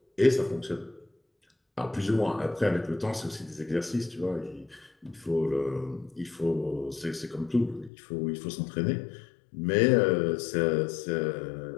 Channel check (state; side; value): drops out; right; at 7.9 s